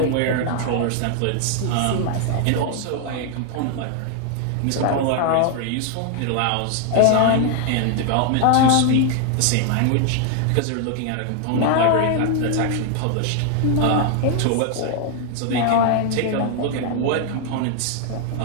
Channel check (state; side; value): different; both; correlation 0.00